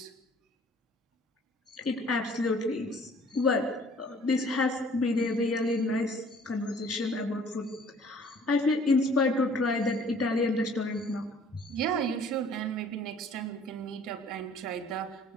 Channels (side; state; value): both; normal; correlation 0.54